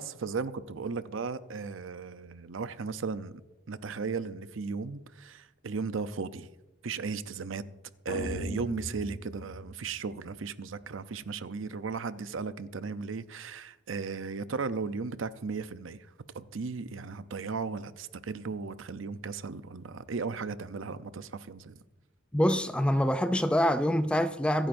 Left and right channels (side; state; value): both; normal; correlation 0.60